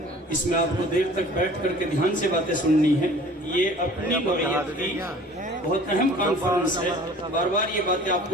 اس میں آپ کو دیر تک بیٹھ کر کے دھیان سے باتیں سننی ہیں۔ یہ اپنی نوعیت کی بہت اہم کانفرنس ہے، بار بار یہ باتیں آپ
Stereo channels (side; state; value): both; normal; correlation 0.48